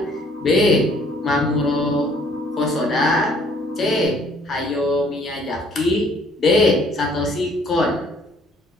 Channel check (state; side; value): normal; both; correlation 0.60